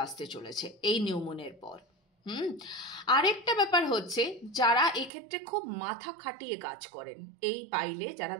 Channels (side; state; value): left; drops out; at 5.1 s